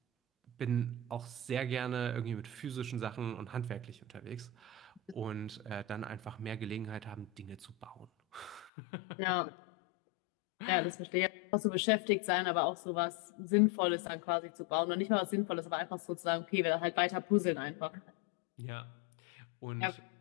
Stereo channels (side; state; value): right; drops out; at 8.7 s